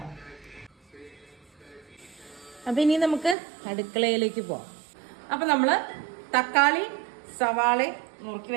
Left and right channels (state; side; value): drops out; left; at 3.4 s